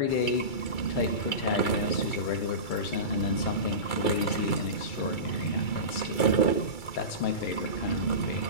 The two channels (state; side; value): late; right; 2.3 ms